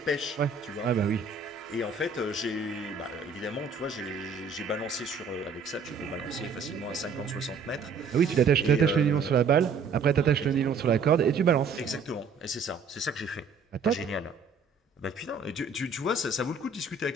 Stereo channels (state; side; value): quieter; left; 4.9 dB